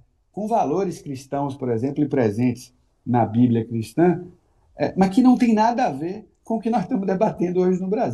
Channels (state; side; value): identical; both; correlation 1.00